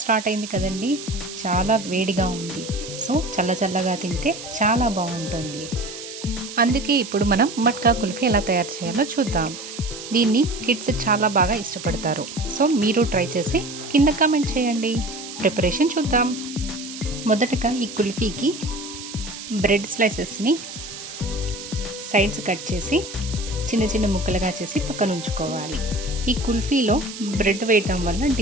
అయింది కదండి, చాలా వేడిగా ఉంది. సో చల్లగా తింటే చాలా బాగుంటుంది. అందుకే ఇప్పుడు మనం మట్కా కుల్ఫీ ఎలా తయారు చేయాలో చూద్దాం. దీన్ని కిడ్స్ చాలా బాగా ఇష్టపడతారు. సో మీరు ట్రై చేసి కింద కామెంట్ చేయండి. ప్రిపరేషన్ చూద్దాం. మొదటగా ఈ కుల్ఫీకి బ్రెడ్ స్లైసెస్ని సైడ్స్ కట్ చేసి చిన్న చిన్న ముక్కలుగా చేసి పక్కన ఉంచుకోవాలి. ఈ కుల్ఫీలో బ్రెడ్ వేయటం వల్ల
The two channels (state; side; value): noise; right; hiss, 11 dB below the sound